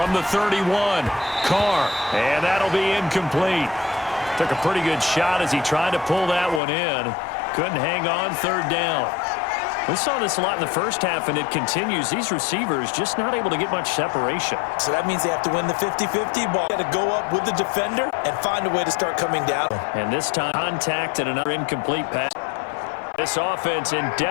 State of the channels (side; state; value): right; drops out; at 6.6 s